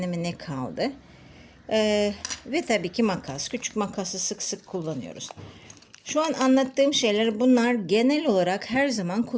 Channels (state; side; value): identical; both; correlation 1.00